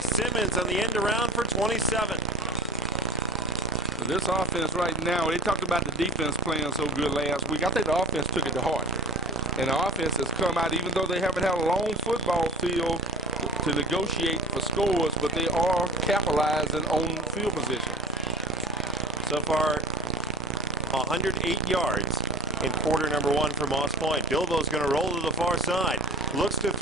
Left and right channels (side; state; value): both; normal; correlation 0.35